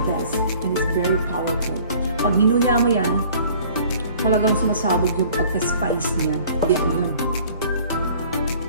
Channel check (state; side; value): inverted; both; correlation -0.52